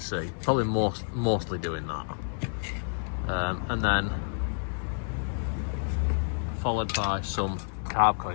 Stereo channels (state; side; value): silent; right; 55 dB below the other